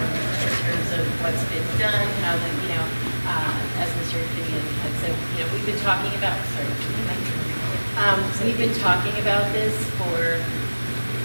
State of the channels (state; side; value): inverted; both; correlation -1.00